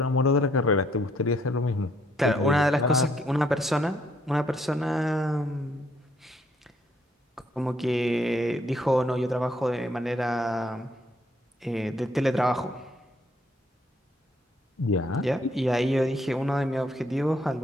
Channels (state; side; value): normal; both; correlation 0.68